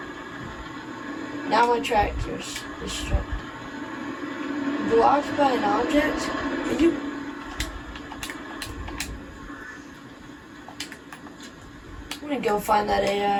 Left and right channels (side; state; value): both; identical; correlation 1.00